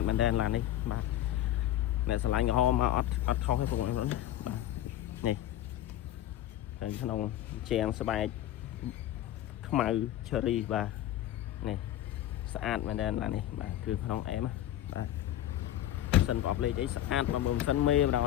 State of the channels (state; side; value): quieter; right; 12.6 dB